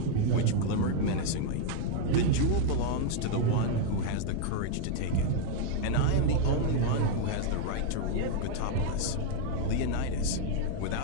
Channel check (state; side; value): different; both; correlation 0.00